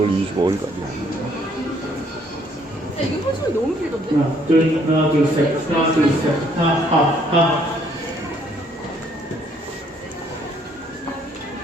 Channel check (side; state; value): both; normal; correlation 0.65